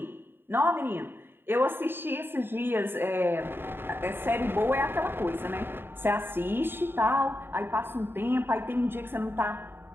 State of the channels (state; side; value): late; left; 0.10 ms